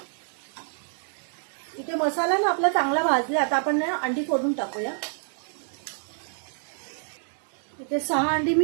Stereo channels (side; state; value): left; silent; digital silence